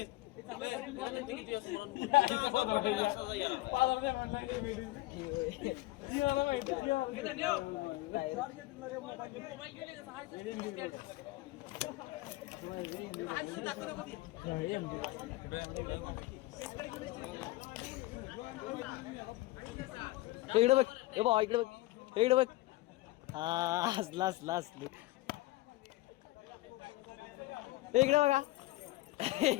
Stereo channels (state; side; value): quieter; right; 19.2 dB